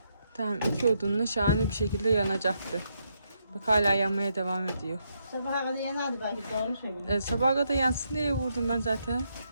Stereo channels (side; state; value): both; inverted; correlation -0.78